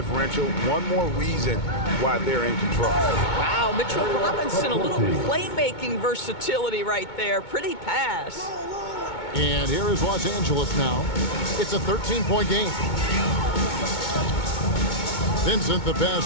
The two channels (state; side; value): late; right; 2.2 ms